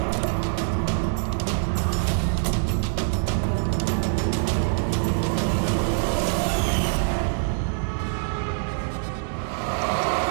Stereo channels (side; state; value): left; silent; 62 dB below the other